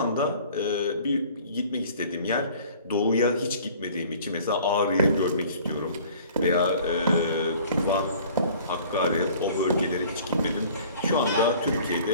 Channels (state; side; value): inverted; both; correlation -0.50